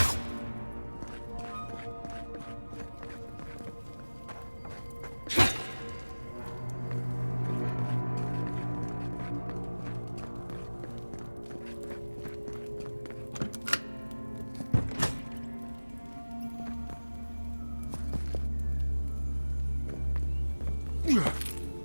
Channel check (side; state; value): both; inverted; correlation -1.00